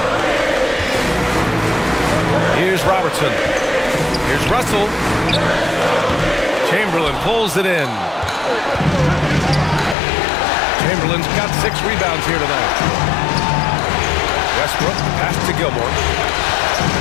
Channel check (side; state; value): right; drops out; at 10.0 s